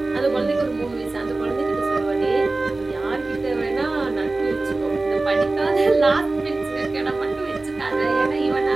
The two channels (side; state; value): left; quieter; 3.2 dB